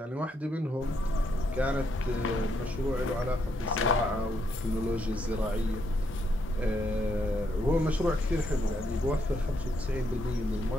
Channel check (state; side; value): normal; both; correlation 0.76